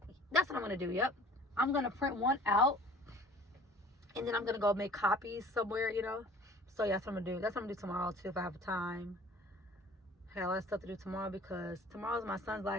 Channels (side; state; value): both; normal; correlation 0.49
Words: that's what I'm going to do. Yep. I'm going to print one out. And then I'm going to go make copies somewhere, you know. So yeah, that's what I'm going to do. That's what I'm going to do tomorrow, too, if I have time. I got a lot of stuff to do tomorrow because tomorrow's my son's